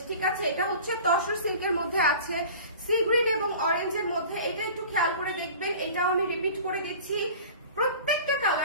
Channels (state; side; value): inverted; both; correlation -0.41